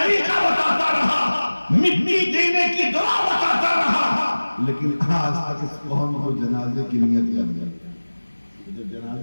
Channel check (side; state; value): both; inverted; correlation -1.00